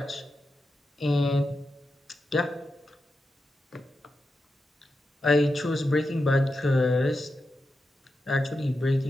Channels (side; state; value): both; normal; correlation 0.89